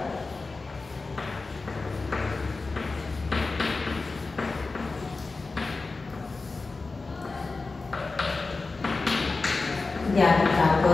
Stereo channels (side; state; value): right; quieter; 3.8 dB